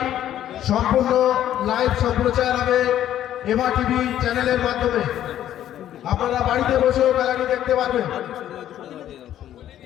সম্পূর্ণ লাইভ সম্প্রচার হবে এমা টিভি চ্যানেলের মাধ্যমে। আপনারা বাড়িতে বসেও খেলাটি দেখতে পারবেন।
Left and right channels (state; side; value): quieter; right; 11.6 dB